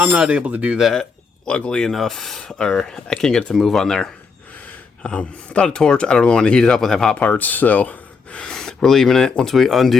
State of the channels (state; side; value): quieter; right; 5.1 dB